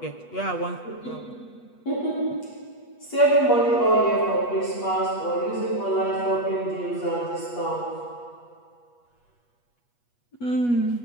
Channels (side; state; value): right; late; 8.3 ms